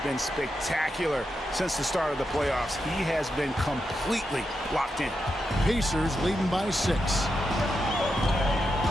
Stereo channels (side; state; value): both; normal; correlation 0.86